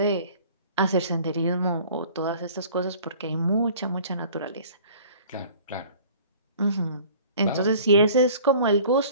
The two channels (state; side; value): inverted; both; correlation -0.49